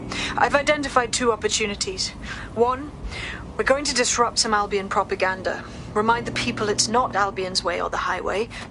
I've identified 2 opportunities. 1, we're going to disrupt some Albion propaganda. Remind the people it's not Albion's way or the highway.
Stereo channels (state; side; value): identical; both; correlation 1.00